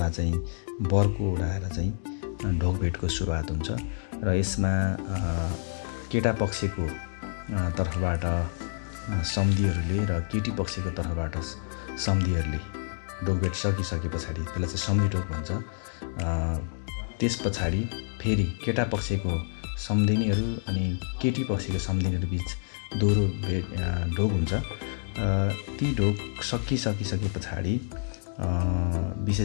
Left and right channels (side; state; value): right; silent; digital silence